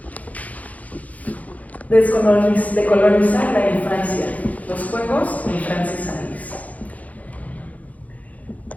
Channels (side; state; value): right; late; 0.073 ms